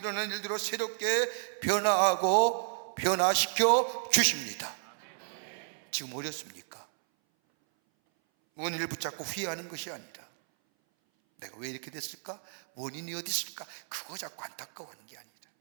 일들로 새롭게 변화하고 변화시켜 주십니다. 지금 어렵습니까? 원인을 붙잡고 후회하는 것이 아니라 내가 왜 이렇게 됐을까? 원인이 어디 있을까? 그거 자꾸 안타까워하는 게 아니라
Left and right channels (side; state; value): left; silent; 57 dB below the other